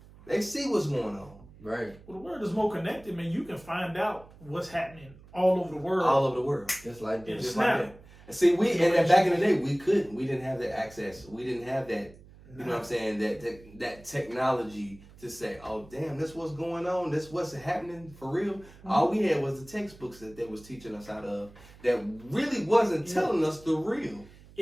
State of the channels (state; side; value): noise; right; hum, 22 dB below the sound